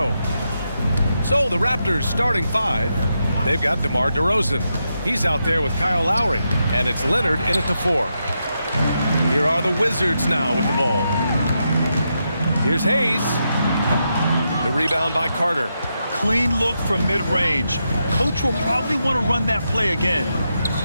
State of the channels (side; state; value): both; inverted; correlation -0.84